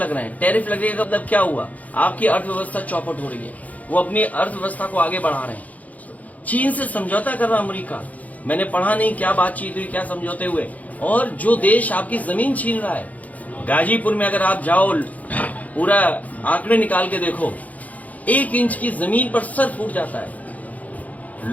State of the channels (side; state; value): right; late; 0.075 ms